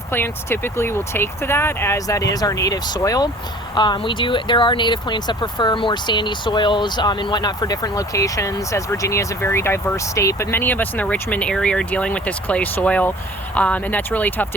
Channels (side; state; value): both; normal; correlation 0.47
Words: plants typically will take to that, as that is our native soil. There are native plants that prefer more sandy soils and whatnot for different locations, as Virginia is a very diverse state, but many of us in the Richmond area are dealing with this clay soil, and that's really tough